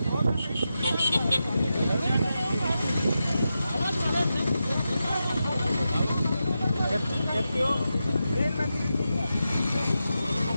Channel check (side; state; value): both; inverted; correlation -0.89